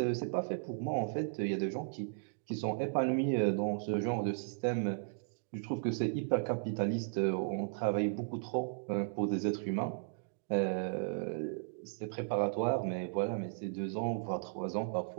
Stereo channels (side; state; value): left; silent; digital silence